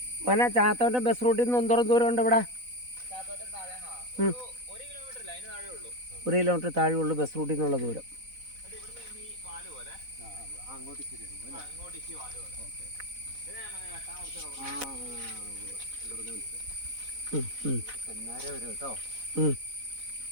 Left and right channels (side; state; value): left; late; 4.0 ms